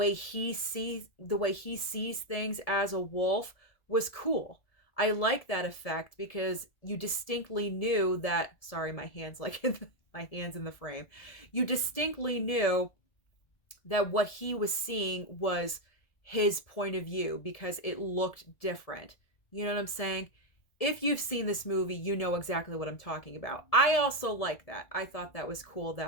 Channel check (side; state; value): right; late; 1.7 ms